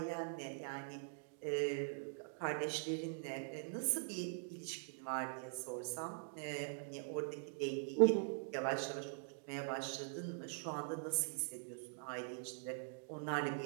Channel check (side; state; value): left; silent; digital silence